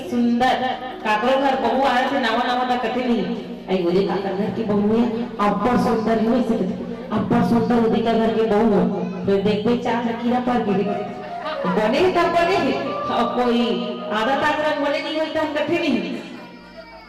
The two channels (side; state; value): both; identical; correlation 1.00